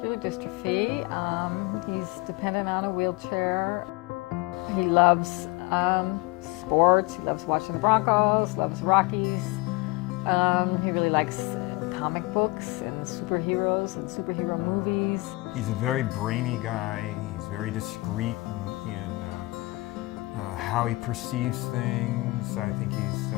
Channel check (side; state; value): right; quieter; 22.6 dB